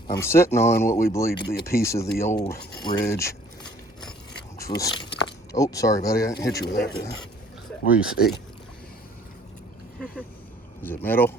I'm sitting on what we believe to be a piece of the old ridge, which was, oh, sorry, buddy, I didn't hit you with that, did I? What do you see? Is it metal?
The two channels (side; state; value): both; normal; correlation 0.56